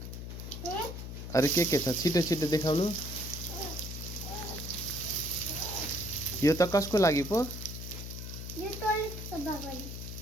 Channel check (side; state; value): left; noise; hum, 8 dB below the sound